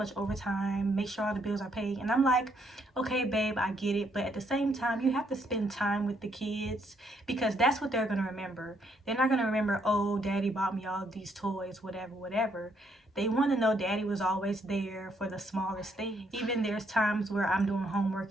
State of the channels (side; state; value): both; normal; correlation 0.72